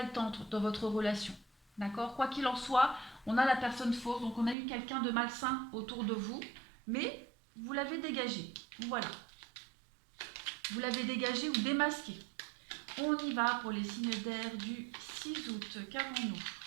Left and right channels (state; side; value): drops out; left; at 4.5 s